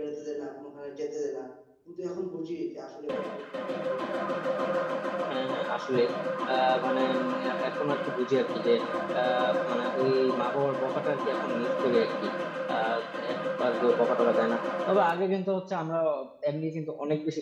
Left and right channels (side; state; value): both; identical; correlation 1.00